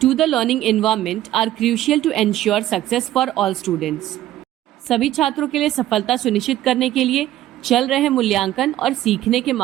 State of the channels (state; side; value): quieter; left; 13.8 dB